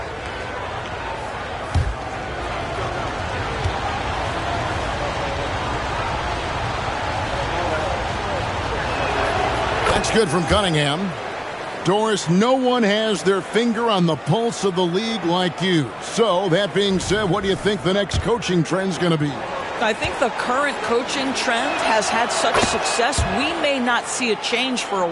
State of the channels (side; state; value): both; identical; correlation 1.00